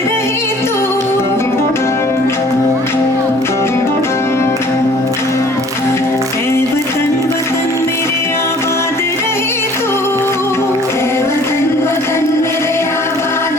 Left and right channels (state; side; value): normal; both; correlation 0.53